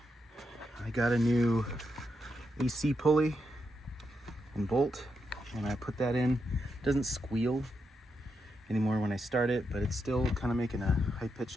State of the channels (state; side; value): normal; both; correlation 0.84